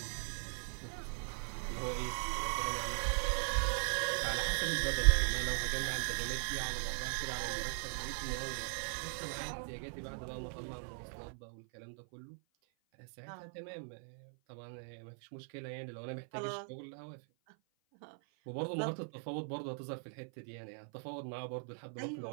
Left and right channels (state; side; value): silent; left; 51 dB below the other